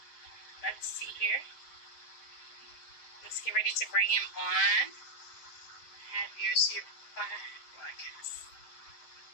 Let's see here. Let's get ready to bring him on. Have yours here broadcast.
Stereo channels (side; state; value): right; late; 7.6 ms